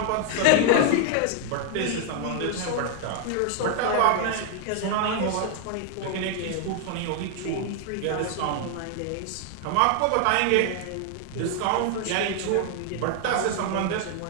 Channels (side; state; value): both; different; correlation 0.00